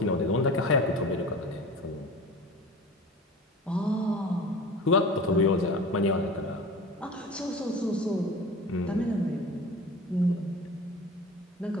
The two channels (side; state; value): both; normal; correlation 0.37